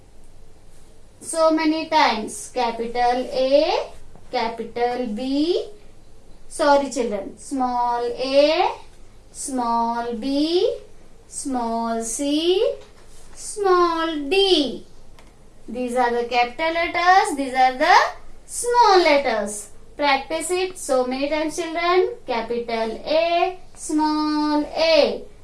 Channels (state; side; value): identical; both; correlation 1.00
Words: so many times. Capital A, capital B. Sorry, children. Small A, small b, small c, small d. These are the capital letters. These are the small letters. Practice it so many times, children. Capital A, small a.